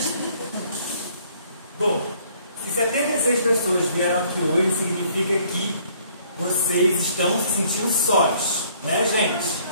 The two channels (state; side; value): inverted; both; correlation -0.61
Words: Bom, se 76 pessoas vieram aqui hoje, significa que vocês estão se sentindo sós, né, gente?